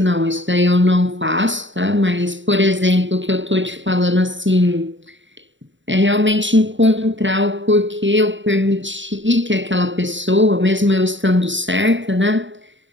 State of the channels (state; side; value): late; left; 0.54 ms